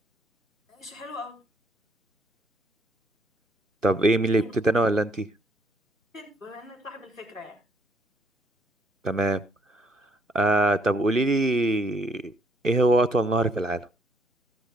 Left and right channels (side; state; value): both; normal; correlation 0.67